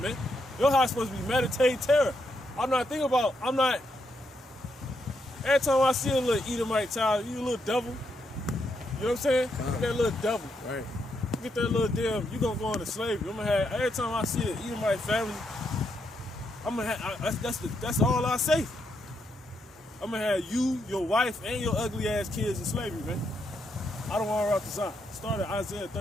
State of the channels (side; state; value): both; normal; correlation 0.79